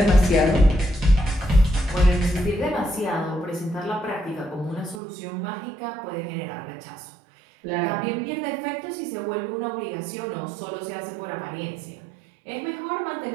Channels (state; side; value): drops out; left; at 5.0 s